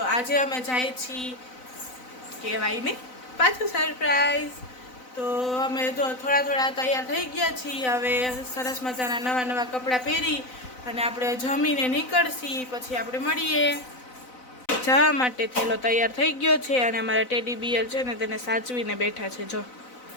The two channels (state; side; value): late; right; 4.0 ms